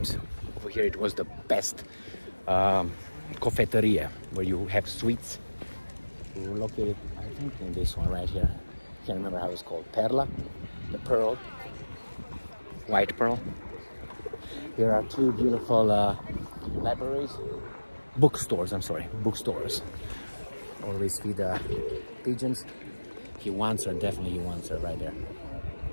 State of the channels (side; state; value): both; inverted; correlation -1.00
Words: over here it was the best cofetteria, where you have sweets. We were located, I think, in this one right here. Can't remember how it's called. Perla, the pearl, white pearl. Here are two beautiful libraries, bookstores. I'm sorry, bookstores. Always feed pigeons. He wants her, definitely he wants her right there.